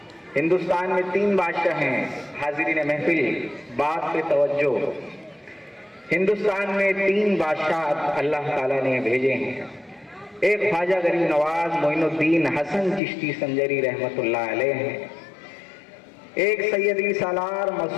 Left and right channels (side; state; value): right; drops out; at 13.0 s